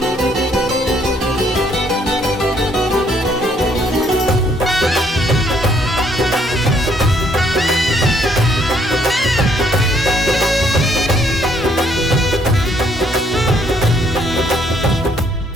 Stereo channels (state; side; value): normal; both; correlation 0.67